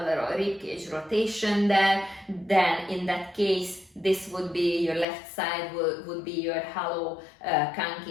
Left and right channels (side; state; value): right; drops out; at 5.1 s